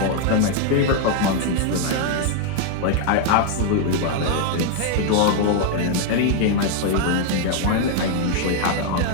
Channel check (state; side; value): different; both; correlation 0.00